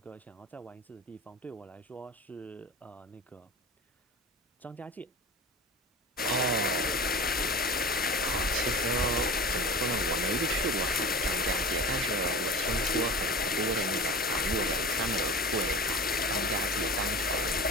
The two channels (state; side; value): normal; both; correlation 0.34